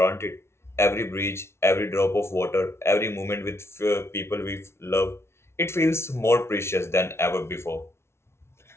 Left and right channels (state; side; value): late; right; 0.12 ms